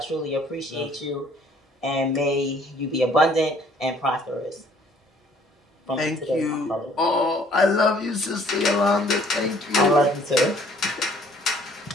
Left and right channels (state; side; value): normal; both; correlation 0.59